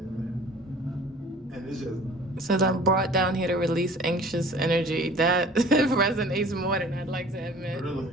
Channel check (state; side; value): normal; both; correlation 0.47